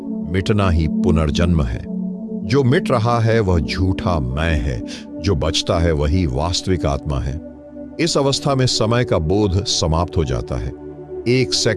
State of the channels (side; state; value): both; identical; correlation 1.00